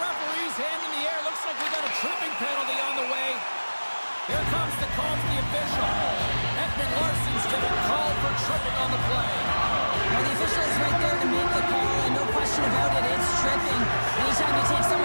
hand in the air. Looks like we got a tripping penalty on the way. Here comes the call from the official. Edmund Larson's getting called for tripping on the play. Well, the official is right there to make the call, and no question about it, it's tripping. Anytime you take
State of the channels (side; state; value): both; inverted; correlation -1.00